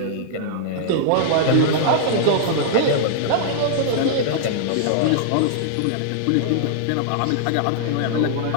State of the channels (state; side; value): different; both; correlation -0.01